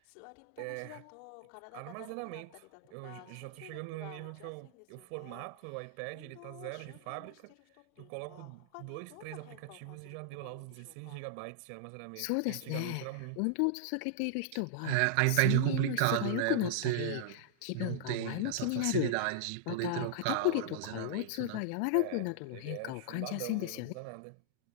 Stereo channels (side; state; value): both; different; correlation -0.01